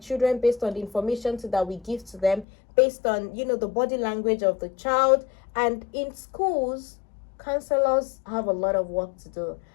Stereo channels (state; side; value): drops out; right; at 2.5 s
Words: based on the information that we give to them, based on the body language of the child. And in schools, counselors have a lot of work to do.